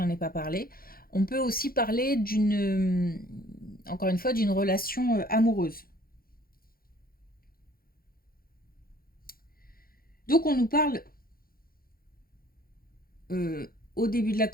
ai pas parlé, on peut aussi parler encore une fois, d'une relation amoureuse. Donc on nous parle au début de la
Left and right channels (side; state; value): right; late; 0.43 ms